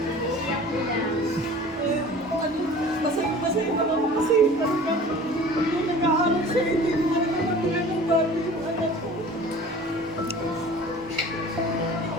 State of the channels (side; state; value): both; normal; correlation 0.43